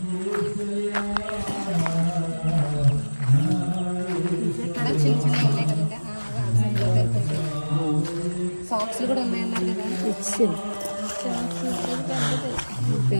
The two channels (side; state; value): both; inverted; correlation -1.00